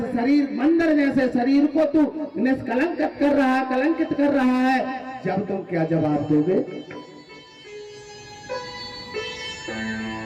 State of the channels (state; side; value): identical; both; correlation 1.00